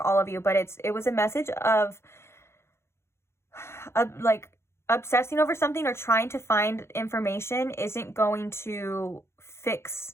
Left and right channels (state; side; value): late; right; 0.13 ms